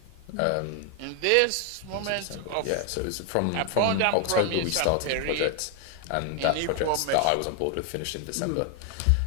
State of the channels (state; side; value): different; both; correlation 0.01